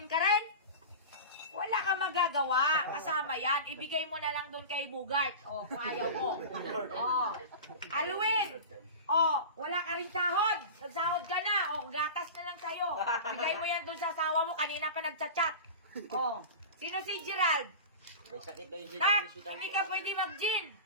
ka rin? Wala kang magagawa. Kasama yan. Ibigay mo na lang doon kay Bugart. O, kung ayaw mo. O, Alwin. O, wala ka rin sahod. Nagsahod ka na. O, gatas na lang sa'yo. Bigay mo yan doon sa asawa mo. Kanina pa nagchat-chat. O, sino si Gerald? May sakit daw yung Tak, hospital. hindi ka pwede mag-gin.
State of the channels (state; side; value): inverted; both; correlation -0.30